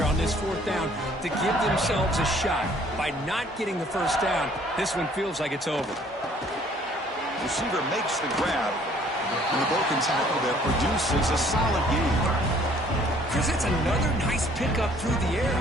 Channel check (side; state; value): both; normal; correlation 0.58